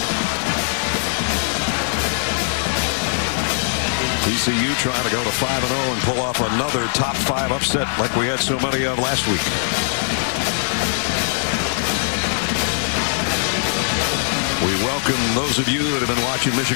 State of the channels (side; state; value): right; silent; 59 dB below the other